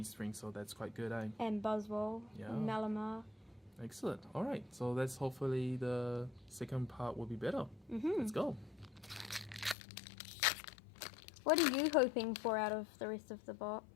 so that's quite good, eh? And Buzzwole, Yeah. and Malamar. Excellent. Alright, so that's hopefully the second part will be better. Let's go. What are you hoping for out of the rest of the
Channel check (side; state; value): right; drops out; at 9.8 s